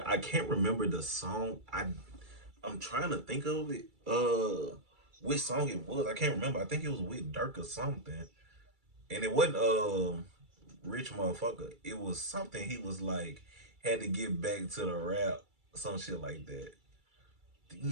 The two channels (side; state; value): left; late; 2.3 ms